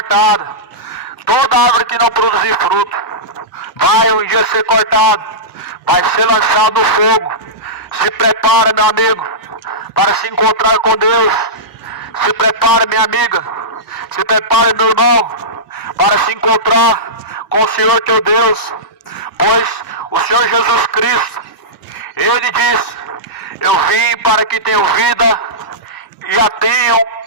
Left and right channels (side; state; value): both; normal; correlation -0.14